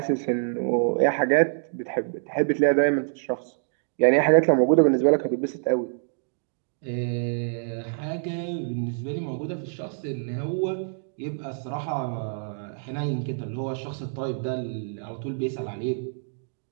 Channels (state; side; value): silent; left; digital silence